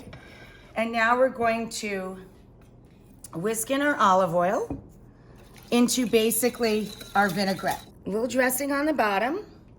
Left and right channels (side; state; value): both; identical; correlation 1.00